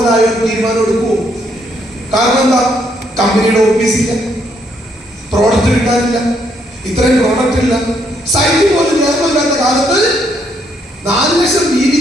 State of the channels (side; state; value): both; normal; correlation 0.73